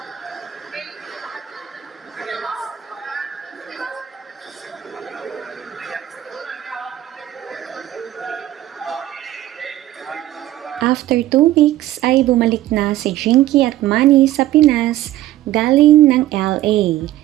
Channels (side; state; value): left; quieter; 14.0 dB